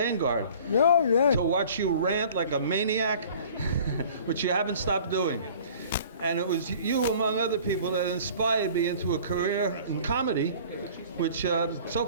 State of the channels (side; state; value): both; inverted; correlation -0.48